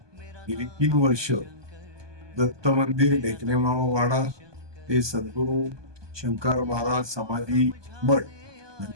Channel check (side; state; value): left; late; 1.2 ms